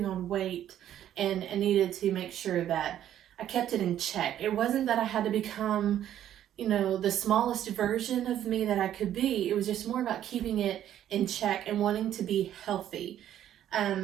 on weight and needed to make sure that I kept it in check. It wasn't that I had to become, you know, the smallest version of me that I could be. It was just more about keeping it in check and wanting to be healthy.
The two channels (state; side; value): quieter; left; 11.2 dB